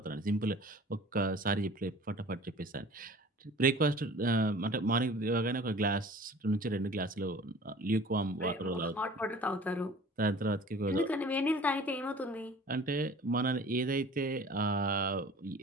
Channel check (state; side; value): normal; both; correlation 0.45